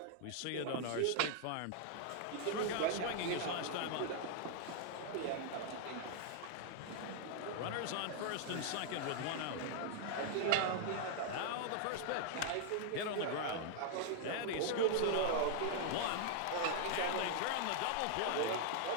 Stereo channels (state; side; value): different; both; correlation 0.00